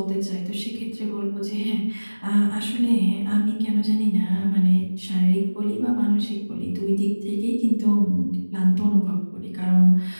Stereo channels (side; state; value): both; inverted; correlation -1.00